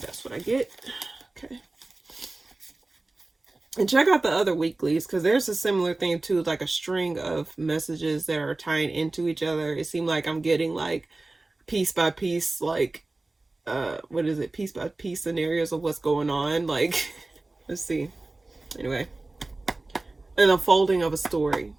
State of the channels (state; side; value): quieter; left; 3.1 dB